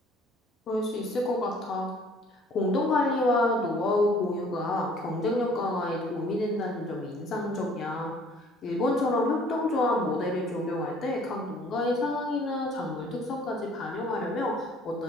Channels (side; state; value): both; normal; correlation 0.56